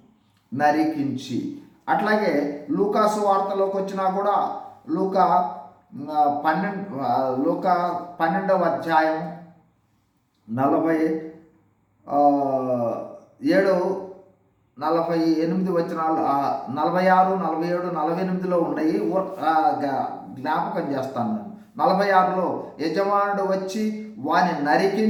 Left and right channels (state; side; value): identical; both; correlation 1.00